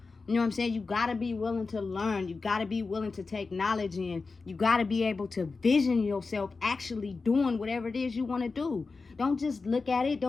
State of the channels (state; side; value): quieter; right; 4.2 dB